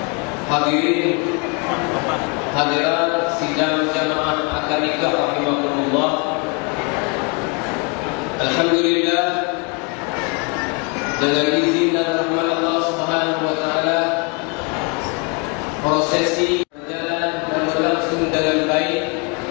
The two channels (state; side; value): quieter; right; 32.7 dB